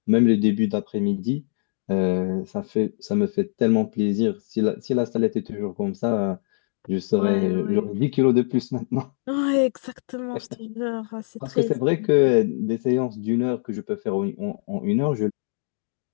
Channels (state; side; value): silent; right; digital silence